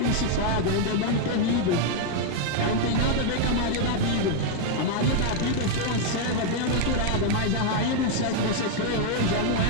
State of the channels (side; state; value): both; different; correlation 0.00